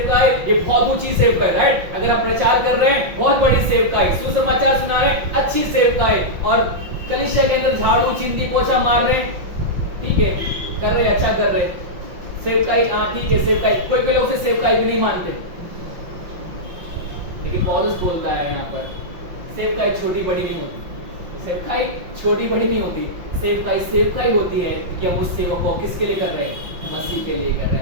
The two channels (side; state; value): left; late; 5.7 ms